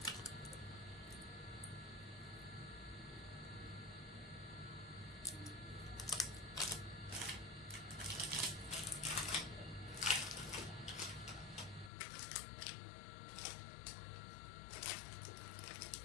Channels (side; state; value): right; drops out; at 11.9 s